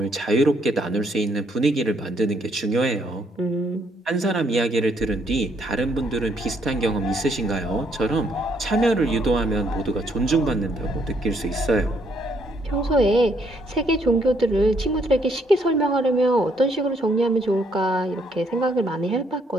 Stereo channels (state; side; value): normal; both; correlation 0.70